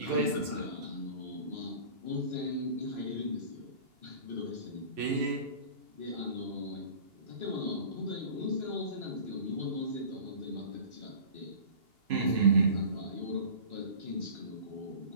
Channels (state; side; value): late; left; 2.8 ms